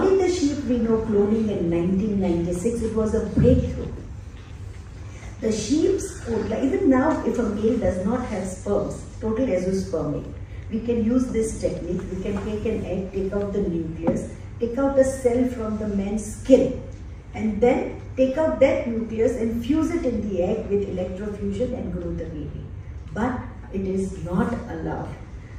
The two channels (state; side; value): identical; both; correlation 1.00